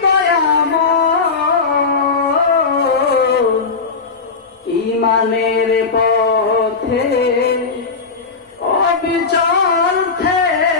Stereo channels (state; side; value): quieter; right; 4.7 dB